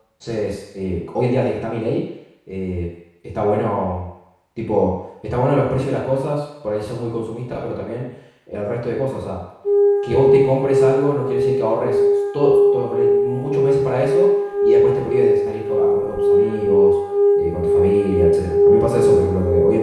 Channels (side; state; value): both; identical; correlation 1.00